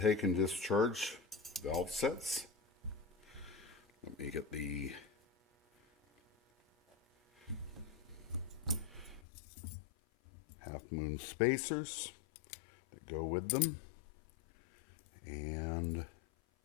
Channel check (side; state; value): right; drops out; at 9.2 s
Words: and discharge valve sets. Let me get the half moon spacers that go with them. And